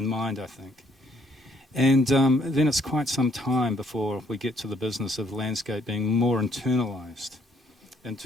mind, I think. And then it's quite some time before we get to the business of landscape being more internalised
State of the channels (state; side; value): normal; both; correlation 0.67